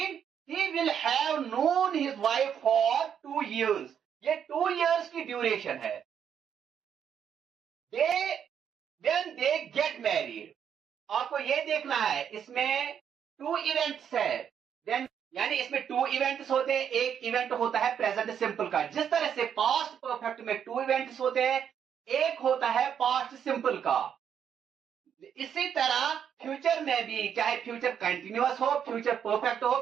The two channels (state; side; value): quieter; left; 8.4 dB